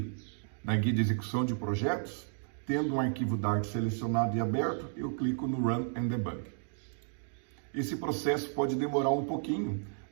na guia de execução de projetos, tendo um arquivo Dart selecionado e aberto, eu clico no Run and Debug. Esse processo pode demorar um pouquinho,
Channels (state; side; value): silent; left; digital silence